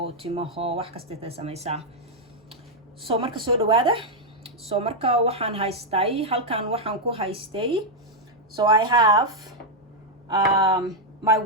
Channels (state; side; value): normal; both; correlation -0.01